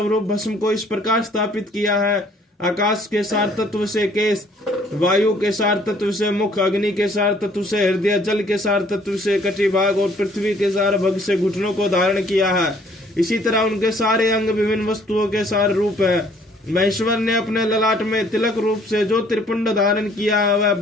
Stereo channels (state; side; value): normal; both; correlation 0.60